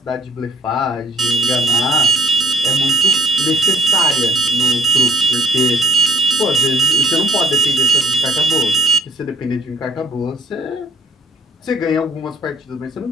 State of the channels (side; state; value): both; normal; correlation 0.55